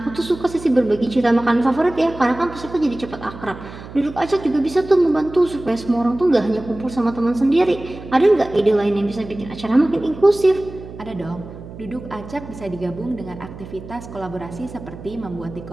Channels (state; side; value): noise; right; hum, 14 dB below the sound